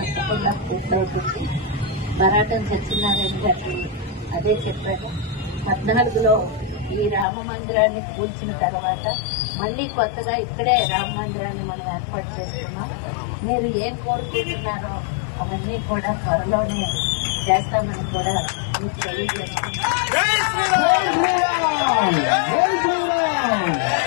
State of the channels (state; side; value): drops out; right; at 7.2 s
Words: పూర్తవుతుంది. బరాటం సత్యనారాయణ గారు అదే చెప్పారు. 14లో ఈ రామ మందిరాన్ని కూల్చిన తర్వాత మళ్లీ కొత్తగా ఇక్కడే రామ మందిరాన్ని మనం ఏర్పాటు చేస్తున్నాం. మీరు ఏం కోరుకుంటున్నారో అవన్నీ కూడా త్వరలోనే చేస్తామని కూడా మీకు తెలియజేస్తున్నాం.